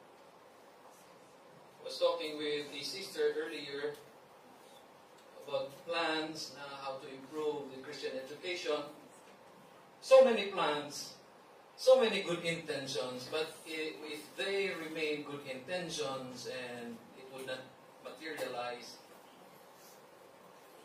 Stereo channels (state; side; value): identical; both; correlation 1.00